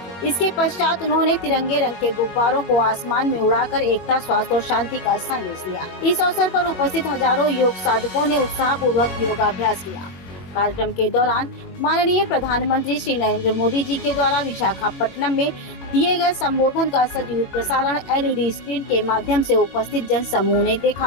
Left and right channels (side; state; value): right; late; 22 ms